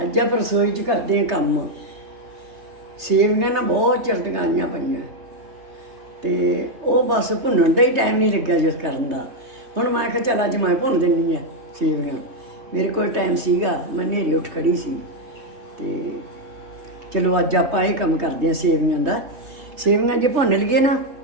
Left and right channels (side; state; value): left; late; 3.2 ms